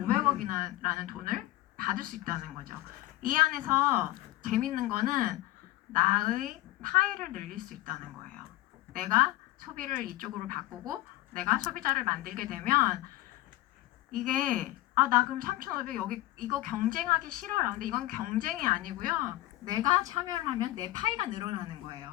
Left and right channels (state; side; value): quieter; right; 16.9 dB